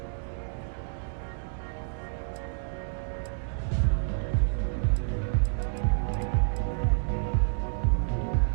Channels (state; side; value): silent; left; digital silence